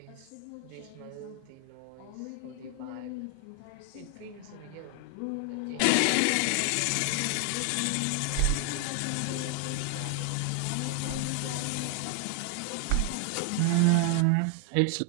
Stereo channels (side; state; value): both; different; correlation 0.00